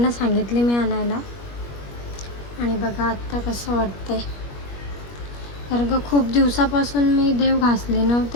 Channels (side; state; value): right; late; 21 ms